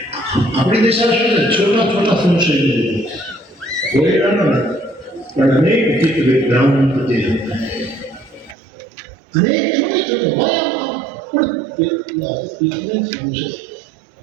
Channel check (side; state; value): left; drops out; at 8.6 s